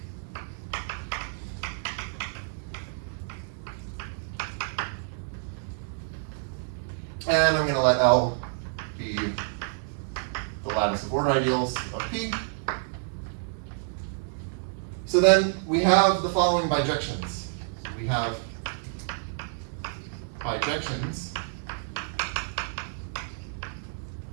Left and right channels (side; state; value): left; silent; 59 dB below the other